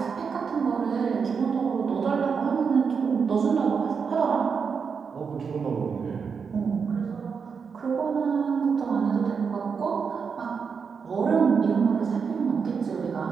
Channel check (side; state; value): left; quieter; 5.9 dB